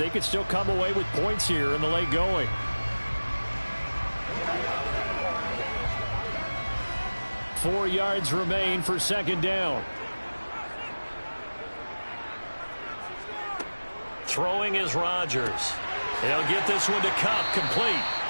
could still come away with points here in the late going. Four yards remain for 2nd down. Throwing is Rodgers. He'll get this one to Kupp, complete.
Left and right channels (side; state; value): both; inverted; correlation -1.00